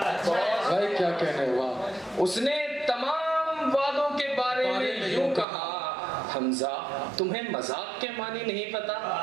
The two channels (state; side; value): drops out; left; at 5.5 s